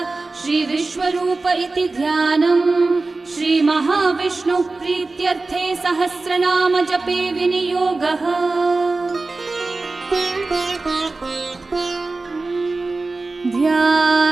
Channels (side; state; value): left; quieter; 3.5 dB